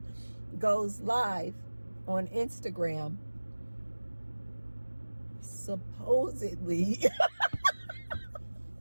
goes live on Instagram, supposedly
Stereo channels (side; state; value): both; inverted; correlation -1.00